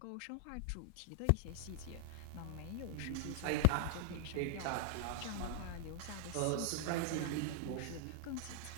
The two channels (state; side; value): different; both; correlation -0.01